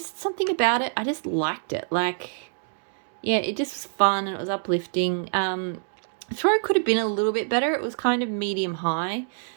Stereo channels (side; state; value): left; silent; digital silence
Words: something about it. I just liked it. Like, yeah, it just was fun and it was uplifting. Throw could have been a little bit better. It was kind of medium high.